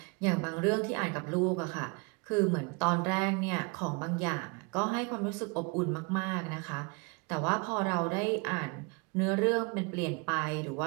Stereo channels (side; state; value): left; quieter; 30.6 dB